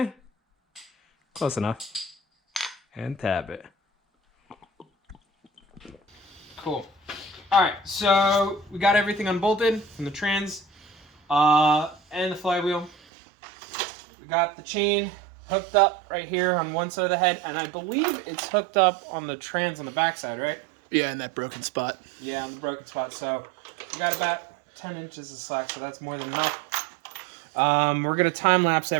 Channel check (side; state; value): left; drops out; at 13.0 s